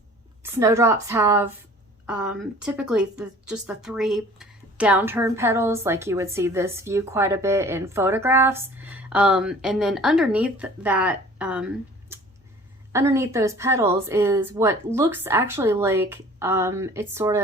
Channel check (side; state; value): both; normal; correlation 0.48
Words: Snowdrops have typically just the 3 downturn petals, like you would see this view quite a bit in photographs. And then underneath that, underneath those petals is what looks actually like it's sort